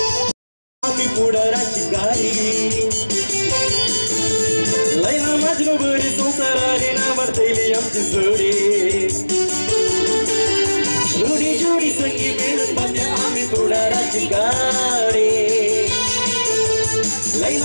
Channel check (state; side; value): inverted; both; correlation -1.00